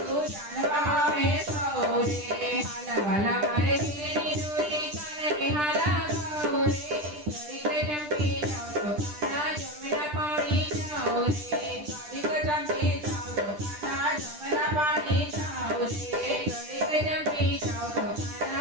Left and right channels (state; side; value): late; left; 10 ms